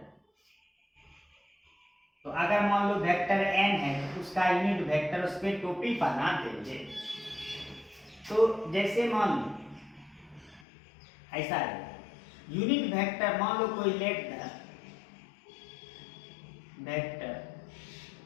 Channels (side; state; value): right; drops out; at 10.7 s